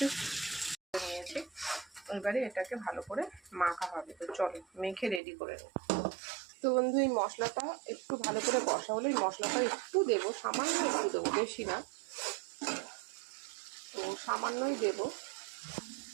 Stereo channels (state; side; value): drops out; left; at 5.2 s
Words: নিয়েছি, এবারে এটাকে ভালো করে মাখা হবে। তো চলো মেখে রেডি করে নেব। তো বন্ধু এই মশলাটা একটু ভালো করে কষা হলে এই মশলাটা একটু দেবো, সামান্য একটু দেবো, বেশি না। তো সামান্যই দেবো,